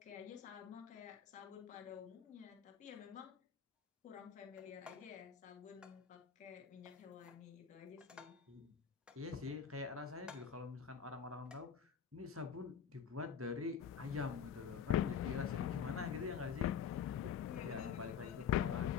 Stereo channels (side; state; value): right; quieter; 7.6 dB